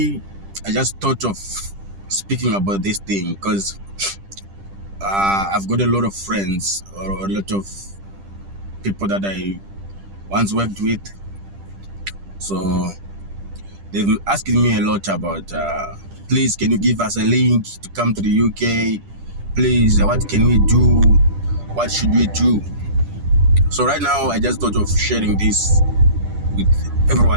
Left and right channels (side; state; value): left; late; 10 ms